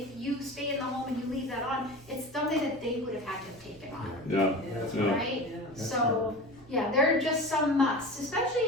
you stay in the home and you leave that on, it's something that they would have had to have taken on, Yeah, yeah. right? So, yeah, there are just some musts,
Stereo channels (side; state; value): both; normal; correlation 0.32